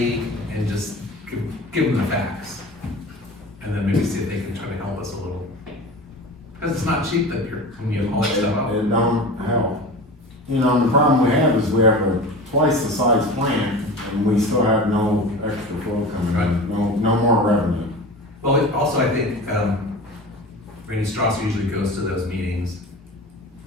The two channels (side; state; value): both; normal; correlation 0.33